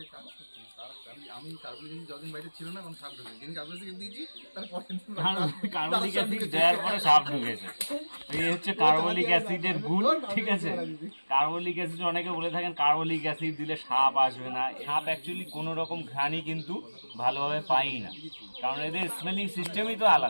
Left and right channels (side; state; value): both; inverted; correlation -1.00